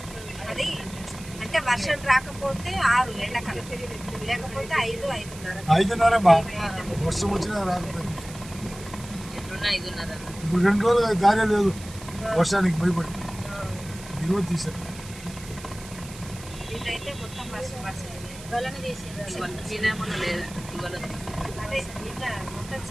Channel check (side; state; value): right; noise; hiss, 16 dB below the sound